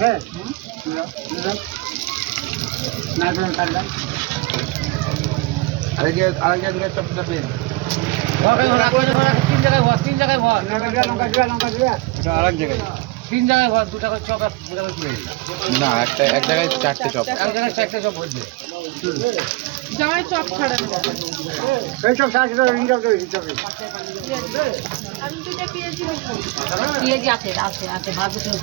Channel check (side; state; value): left; quieter; 21.7 dB